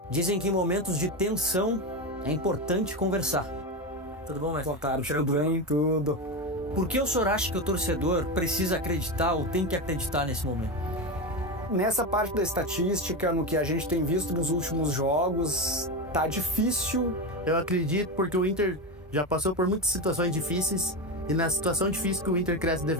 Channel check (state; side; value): normal; both; correlation 0.17